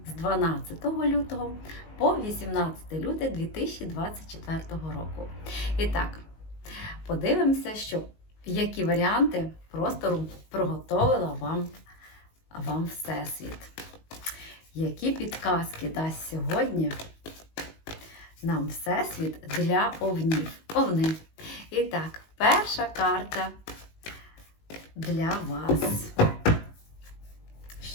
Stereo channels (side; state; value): right; late; 19 ms